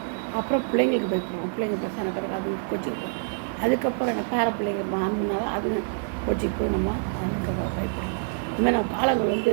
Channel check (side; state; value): left; silent; 61 dB below the other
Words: அப்புறம் பிள்ளைங்களுக்கு பயப்படுவோம், பிள்ளைங்க பெருசான பிறகு அது கோச்சிக்கு. அதுக்கப்புறம் என்ன பேர பிள்ளைங்க ஆண்டுனால அது கோச்சிக்கு போய் நம்ம அதுக்கு பயப்படும். இதுமாதிரி நம்ம